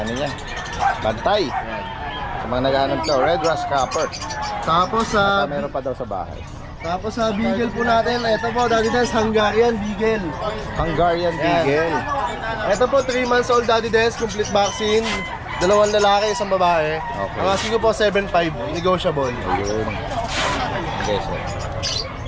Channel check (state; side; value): identical; both; correlation 1.00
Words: niya. Bantay. Sa mga naghahanap to, Red Rust Copper. Tapos sa Meron pa daw sa bahay. Beagle po natin, ito po, Daddy Dance, Hungarian Beagle. Hungarian Yan. Beagle. Ito po, 3 months old, Daddy Dance, complete vaccine. 2 lalaki, 1 babae. Okay. Ang asking ko po, 7.5, negotiable. Ayun. Okay, so.